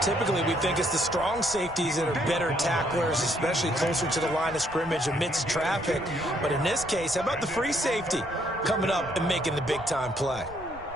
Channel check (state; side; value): noise; right; rumble, 19 dB below the sound